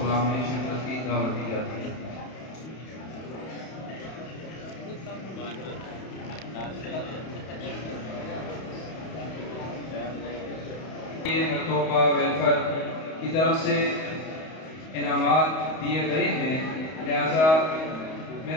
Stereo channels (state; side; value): late; right; 31 ms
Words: میں شرکت کی دعوت دی جاتی ہے۔ مرتوبہ ویلفیئر کی طرف سے انعامات دیے گئے ہیں، لہذا